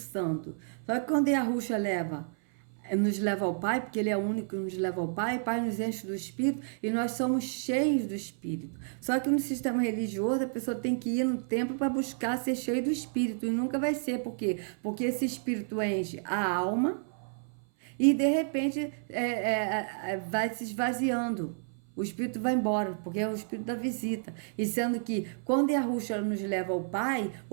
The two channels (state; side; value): silent; left; 57 dB below the other